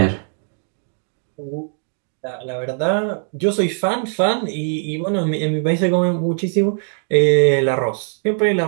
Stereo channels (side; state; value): left; silent; 66 dB below the other